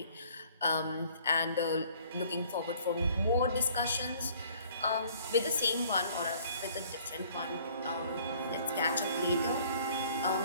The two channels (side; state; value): both; inverted; correlation -0.56